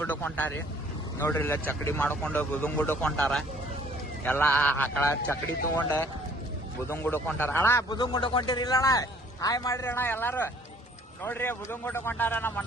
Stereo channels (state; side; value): normal; both; correlation 0.57